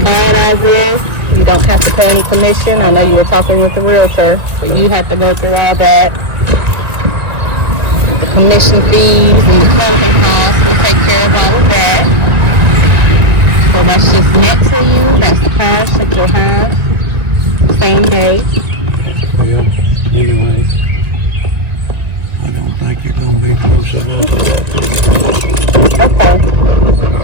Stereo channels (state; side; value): late; left; 1.9 ms